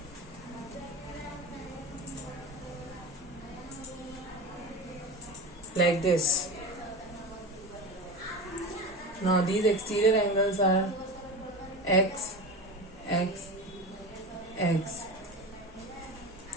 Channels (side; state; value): both; normal; correlation 0.27